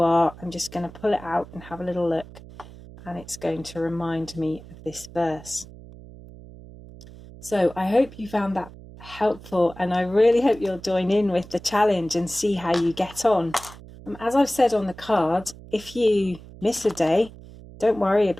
are, I'm just going to pull it out and have a little look, and it's going to remind me of this verse. So I hope you found that helpful, and I really hope you'll join in with the challenge and see how you get on. As I've said on the card, if you miss a day, don't worry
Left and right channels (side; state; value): right; noise; hum, 18 dB below the sound